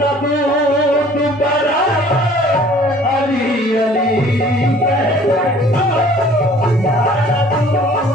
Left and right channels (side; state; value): both; normal; correlation 0.52